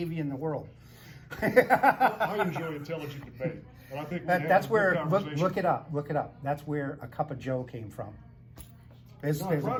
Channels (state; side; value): identical; both; correlation 1.00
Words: in the world. I enjoy intelligent debate, and I think we have That's a good where, conversation. look it up. That's where a cup of Joe came from. There's No, I a pride